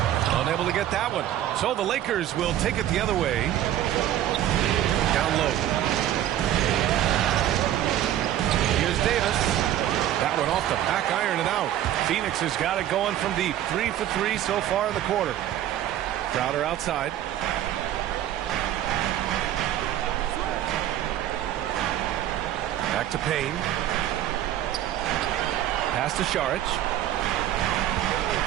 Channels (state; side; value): quieter; left; 12.1 dB